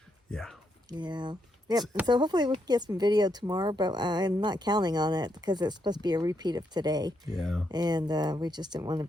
Yeah. Yeah. Yep. And so hopefully we can get some video tomorrow, but I'm not counting on it because it's supposed to be a repeat of today. Yeah. And we just didn't want to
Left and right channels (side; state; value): both; normal; correlation 0.79